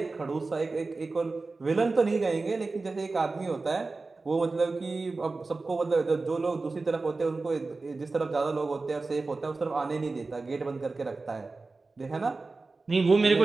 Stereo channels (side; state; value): left; quieter; 3.7 dB